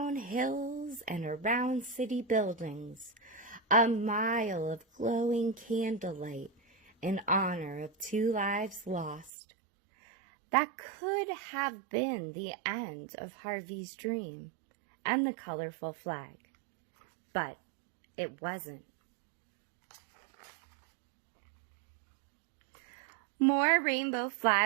hills and around city buildings, a mile of glowing candlelight in honor of 2 lives lost. That could have been the end of Harvey's dream and the colorful flag, but it wasn't. More rainbow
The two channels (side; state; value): left; drops out; at 9.3 s